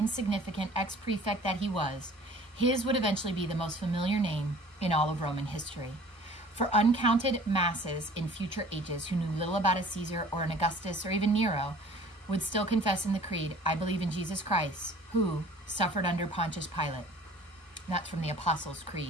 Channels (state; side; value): normal; both; correlation 0.49